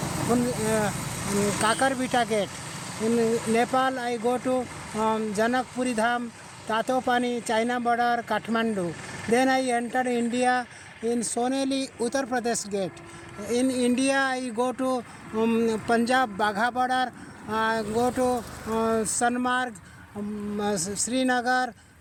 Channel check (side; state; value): both; identical; correlation 1.00